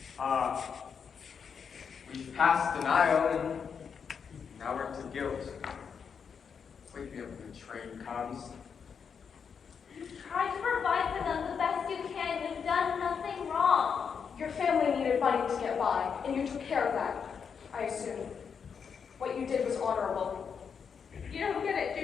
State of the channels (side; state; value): right; quieter; 6.6 dB